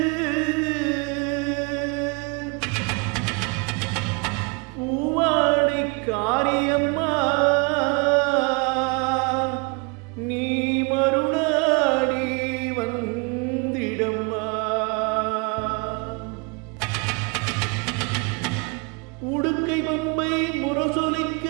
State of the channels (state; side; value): quieter; left; 32.3 dB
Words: பூவாடை காரியம்மா நீ மருளாடி வந்திடம்மா. உடுக்கை பம்பை முரசொலிக்க